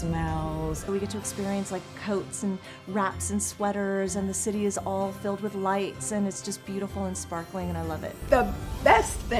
We get to experience like coats and wraps and sweaters, and the city is all filled with lights, and it's just beautiful and sparkling, and I love it. The best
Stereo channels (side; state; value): both; identical; correlation 1.00